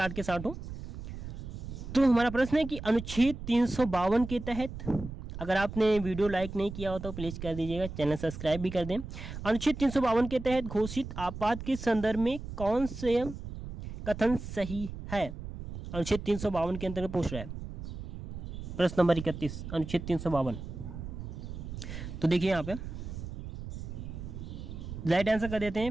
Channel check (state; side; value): noise; right; rumble, 9 dB below the sound